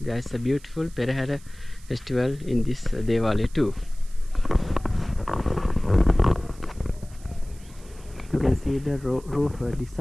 there is a beautiful Perahara festival in this Devalaya too. You can see the roof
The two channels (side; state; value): right; noise; hiss, 24 dB below the sound